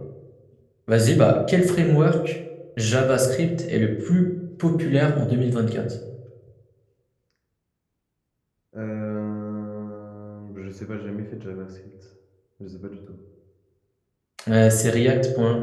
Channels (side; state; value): both; identical; correlation 1.00